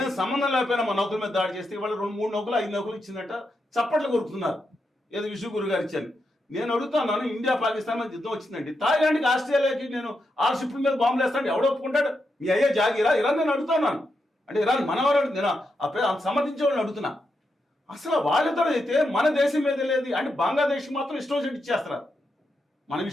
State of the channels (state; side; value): normal; both; correlation 0.85